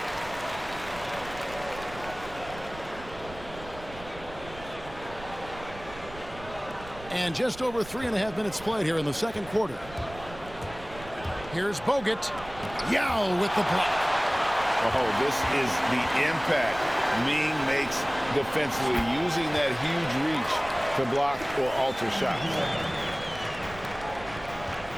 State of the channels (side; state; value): right; noise; rumble, 16 dB below the sound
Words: And just over 3.5 minutes played here in the second quarter. Here's Bogut. Yao with the block. Oh, this is the impact Ming makes defensively, using that huge reach to block or alter shots.